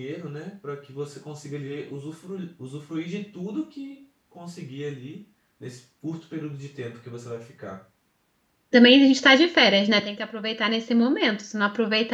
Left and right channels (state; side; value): identical; both; correlation 1.00